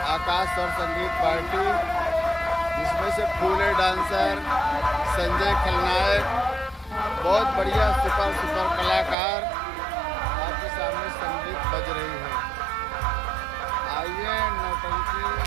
आकाश स्वर संगीत पार्टी, जिसमें से फूले डांसर, संजय खलनायक, बहुत बढ़िया सुपर कलाकार आपके सामने संगीत बज रही है। आइए नौटंकी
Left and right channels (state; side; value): drops out; left; at 9.2 s